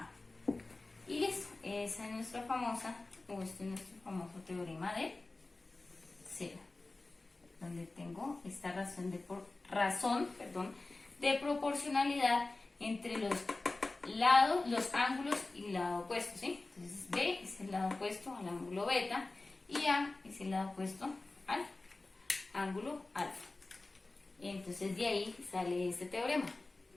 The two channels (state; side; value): quieter; right; 3.2 dB